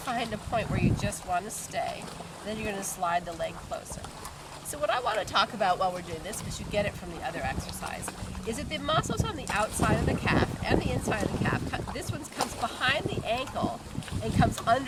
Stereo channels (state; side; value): identical; both; correlation 1.00